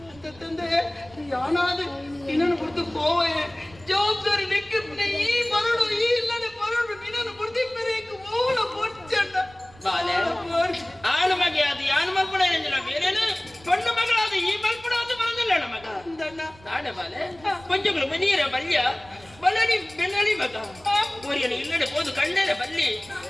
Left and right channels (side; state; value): right; noise; rumble, 24 dB below the sound